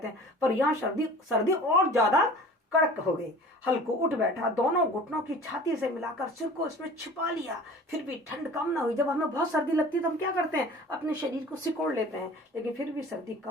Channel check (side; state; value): both; normal; correlation 0.43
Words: हैं, पर यहाँ सर्दी और ज्यादा कड़क हो गई। हल्कू उठ बैठा, दोनों घुटनों की छाती से मिलाकर सिर को इसमें छिपा लिया। फिर भी ठंड कम ना हुई। जब हमें बहुत सर्दी लगती है तो हम क्या करते हैं? अपने शरीर को सिकोड़ लेते हैं, लेकिन फिर भी सर्दी